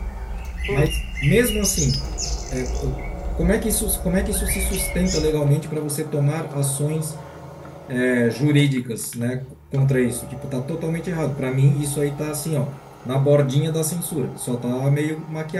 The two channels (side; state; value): both; identical; correlation 1.00